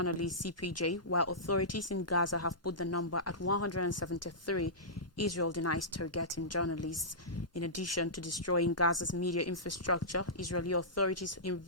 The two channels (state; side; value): normal; both; correlation -0.17